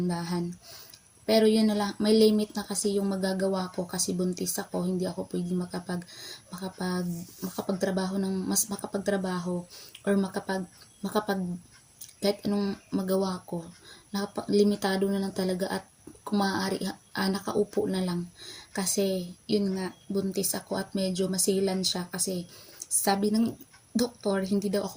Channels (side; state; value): both; identical; correlation 1.00